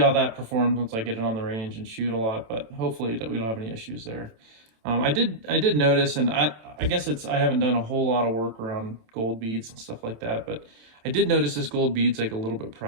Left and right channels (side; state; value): left; late; 27 ms